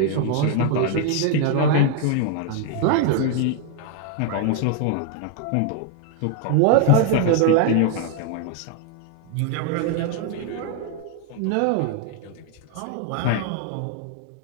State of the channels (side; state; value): both; different; correlation 0.00